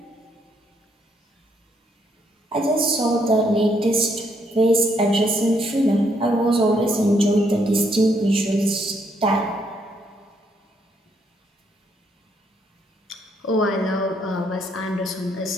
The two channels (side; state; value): both; normal; correlation 0.73